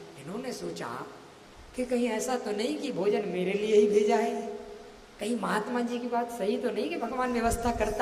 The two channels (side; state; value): both; identical; correlation 1.00